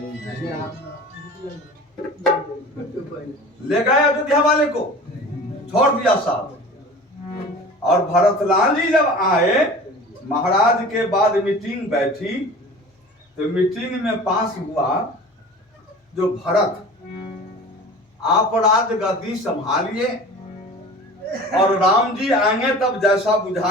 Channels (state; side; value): normal; both; correlation 0.40